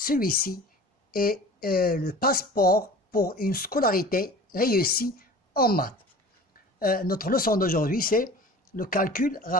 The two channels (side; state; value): both; normal; correlation 0.41